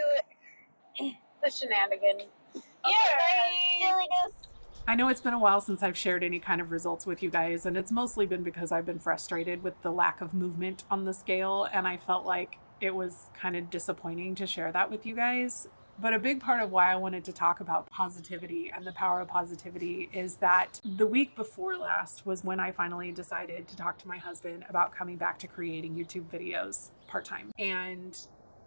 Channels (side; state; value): both; inverted; correlation -1.00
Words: you the shenanigans. Silliness. I know it's been a while since I've shared any kind of results with you guys, and it's mostly been because I've been frustrated with the lack of movement on the scale, and I felt like it was kind of disappointing to share that with you guys. But a big part of why I wanted to talk about positivity and the power of positivity is that the week before last was when I finally decided to talk to my husband about coming back to creating YouTube videos part-time. And